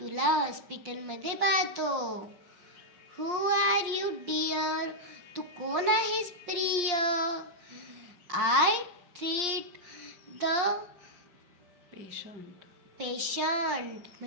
हॉस्पिटलमध्ये पाहतो. हू आर यू डिअर, तू कोण आहेस प्रिय. आय ट्रीट द पेशंट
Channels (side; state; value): left; late; 5.7 ms